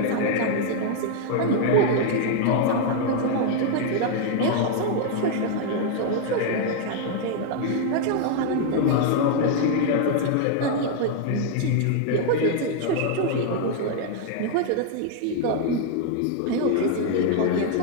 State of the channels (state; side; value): different; both; correlation 0.00